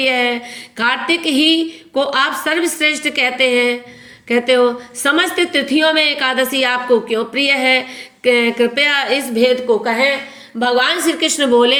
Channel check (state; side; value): identical; both; correlation 1.00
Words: है। कार्तिक ही को आप सर्वश्रेष्ठ कहते हो। समस्त तिथियों में एकादशी आपको क्यों प्रिय है, कृपया इस भेद को कहें। भगवान श्री कृष्ण बोले,